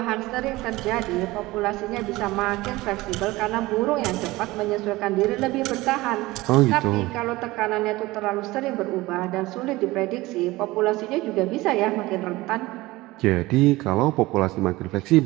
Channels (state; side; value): quieter; left; 19.7 dB